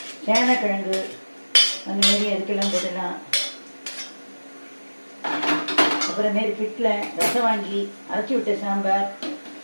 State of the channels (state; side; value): inverted; both; correlation -1.00